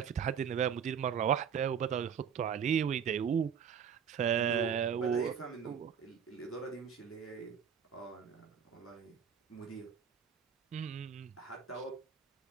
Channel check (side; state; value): left; quieter; 7.6 dB